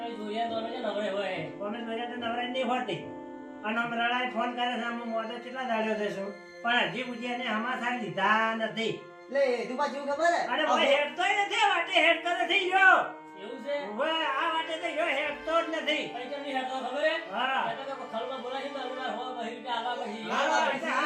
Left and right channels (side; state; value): both; identical; correlation 1.00